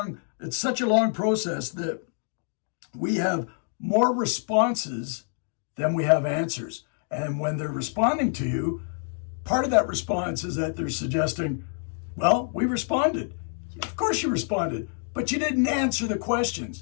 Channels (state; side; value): silent; right; 56 dB below the other